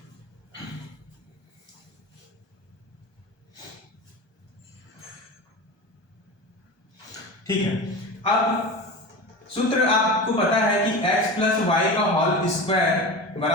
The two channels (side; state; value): right; late; 1.2 ms